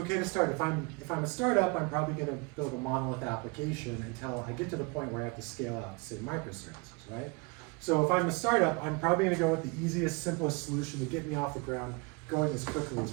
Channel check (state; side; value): quieter; left; 29.4 dB